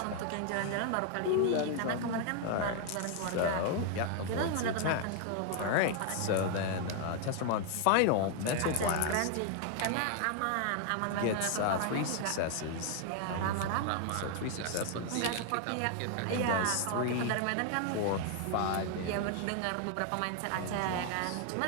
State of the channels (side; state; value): both; different; correlation 0.00